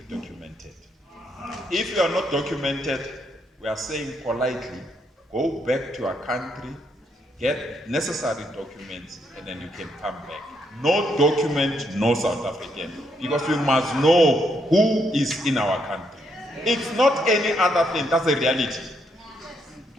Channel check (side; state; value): both; normal; correlation 0.75